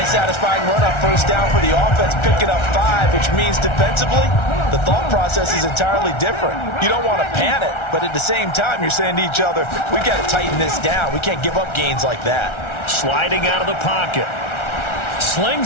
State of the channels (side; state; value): right; late; 1.3 ms